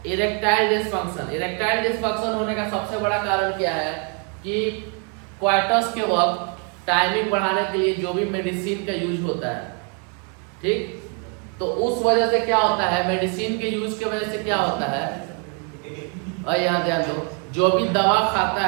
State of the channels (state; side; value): quieter; left; 37.9 dB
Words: Erectile dysfunction. इरेक्टाइल डिसफंक्शन होने का सबसे बड़ा कारण क्या है कि क्वार्टर्स के वक्त टाइमिंग बढ़ाने के लिए जो भी मेडिसिन का यूज होता है, ठीक, तो उस वजह से क्या होता है, मेडिसिन के यूज की वजह से क्या होता है, और यहाँ ध्यान दो, जो भी दवा खाता